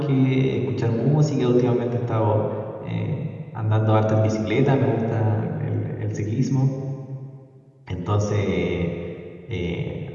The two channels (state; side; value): identical; both; correlation 1.00